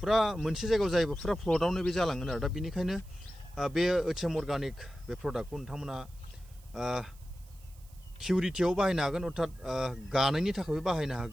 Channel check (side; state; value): right; noise; hiss, 26 dB below the sound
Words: मोनसे जायगायाव जायोबा फुरा फ्लटआवनो बे जालांगोन आरो दा बेनिखायनो बे एचएम अर्गानिक बे प्रडाक्टखौ नोंथांमोना किउरिटियाव बाहायनो हागोन अर्थात गानायनि थाखायबो बाहायनो